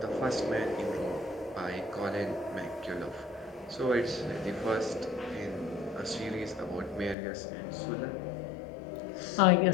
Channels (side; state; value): right; drops out; at 7.2 s